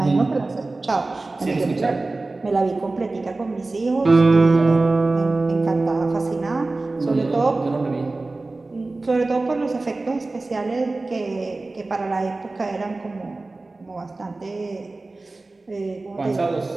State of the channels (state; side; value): quieter; left; 3.3 dB